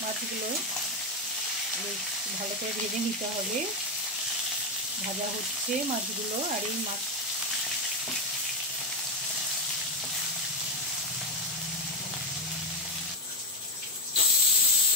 মাছগুলো ভালো করে ভেজে নিতে হবে। ভাজা হচ্ছে মাছগুলো। আর এই মাছ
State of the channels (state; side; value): normal; both; correlation 0.10